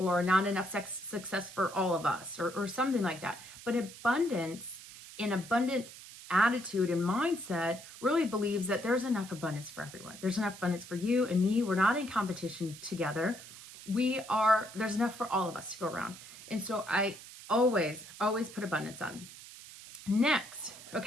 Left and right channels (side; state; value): right; noise; hiss, 16 dB below the sound